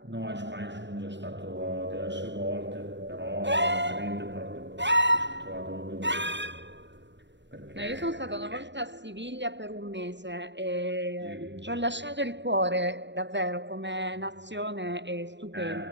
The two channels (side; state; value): left; late; 0.52 ms